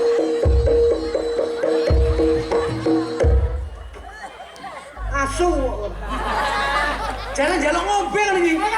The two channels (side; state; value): both; identical; correlation 1.00